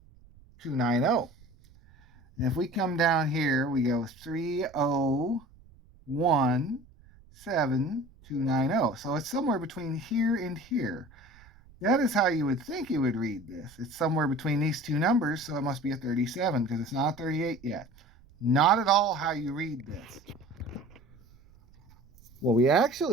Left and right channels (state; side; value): noise; right; rumble, 26 dB below the sound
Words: And if we come down here, we go 3017290. So it's somewhere between here and here. That is how you would think you would read this. It's somewhere between these two numbers, so it must be a 37 because it's not a 38 yet. Not at all how you read this. What we